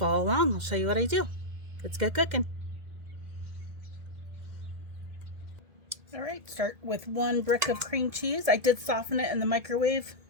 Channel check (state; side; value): late; left; 2.1 ms